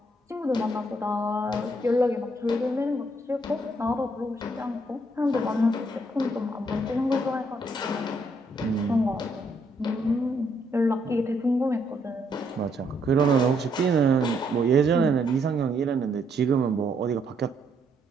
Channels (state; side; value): normal; both; correlation 0.72